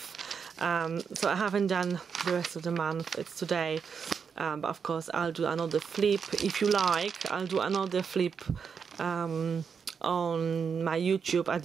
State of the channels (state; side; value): quieter; left; 6.4 dB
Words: So I haven't done the rest of the month, it's today, but of course I'll do another flip. If you like, I'll do another flip on my YouTube at